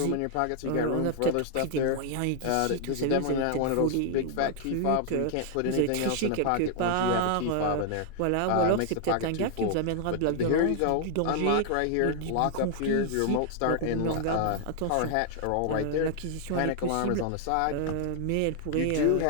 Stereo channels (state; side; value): different; both; correlation 0.00